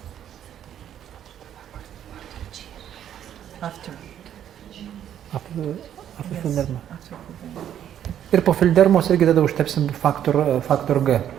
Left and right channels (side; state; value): left; quieter; 10.2 dB